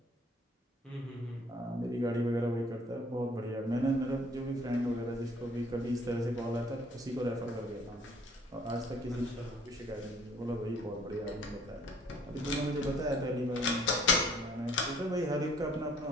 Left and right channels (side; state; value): both; normal; correlation 0.58